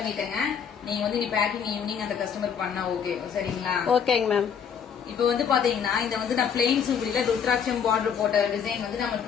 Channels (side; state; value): right; quieter; 7.4 dB